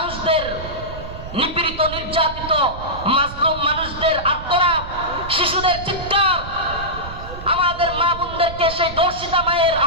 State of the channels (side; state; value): right; noise; rumble, 11 dB below the sound